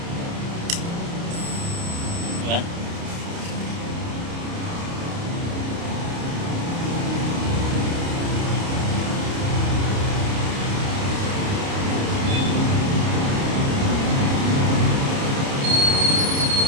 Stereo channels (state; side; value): late; left; 29 ms